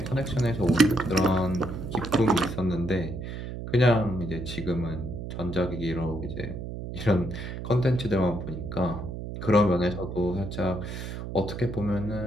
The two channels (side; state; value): right; noise; hum, 7 dB below the sound